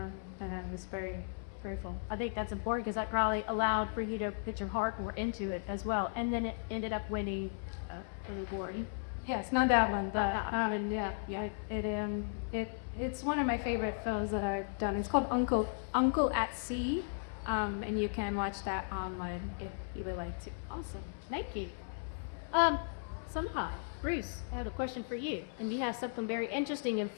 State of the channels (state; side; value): silent; right; 54 dB below the other